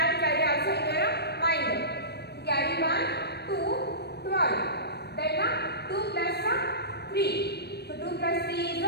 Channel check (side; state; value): right; late; 0.48 ms